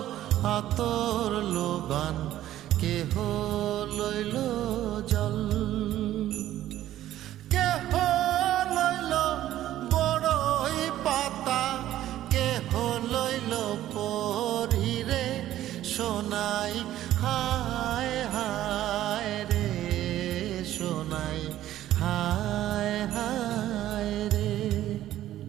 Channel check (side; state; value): left; quieter; 13.2 dB